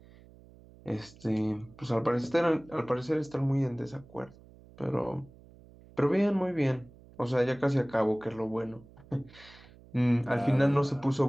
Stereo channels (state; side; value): noise; right; hum, 23 dB below the sound